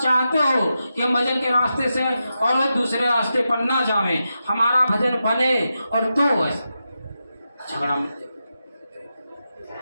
चाहते हो कि हम भजन के रास्ते से और दूसरे रास्ते पर ना जावें, हमारा भजन बने और तो ऐसा झगड़ा मिटे,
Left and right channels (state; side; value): inverted; both; correlation -0.88